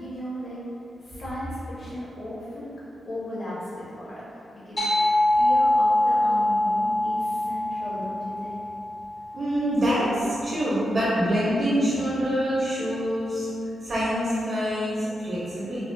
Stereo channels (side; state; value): both; normal; correlation 0.90